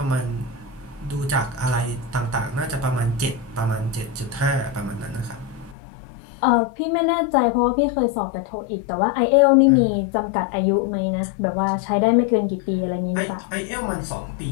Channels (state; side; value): drops out; right; at 5.8 s